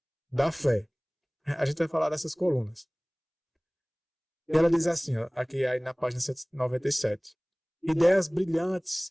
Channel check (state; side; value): identical; both; correlation 1.00